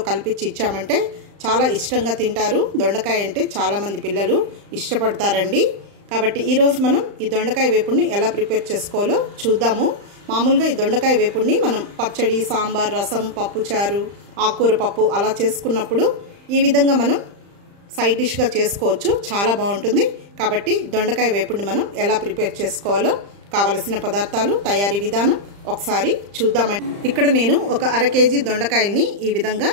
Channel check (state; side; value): late; left; 35 ms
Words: కలిపిచ్చి ఇచ్చామంటే చాలా ఇష్టంగా తింటారు. దొండకాయ అంటే చాలామంది పిల్లలు ఇష్టపడతారండి. కాబట్టి ఈరోజు మనం ఈ దొండకాయ వేపుడిని ఎలా ప్రిపేర్ చేసుకోవాలో చూద్దాము. మామూలుగా ఈ దొండకాయ వేపుడిని మనం పచ్చడి, సాంబార్, రసం, పప్పుచారు, ఆకుకూర పప్పు అలా చేసుకున్నప్పుడు ఈ విధంగా మనం సైడ్ డిష్గా చేసుకోవచ్చు. చాలా బాగుంటుంది. కాబట్టి దొండకాయ వేపుడిని మనం ఎలా ప్రిపేర్ చేసుకోవాలో కావలసిన పదార్థాలు, తయారీ విధానం ఒకసారి చూద్దామండి. ఇక్కడ నేను ఒక అర కేజీ దొండకాయల్ని ఈ విధంగా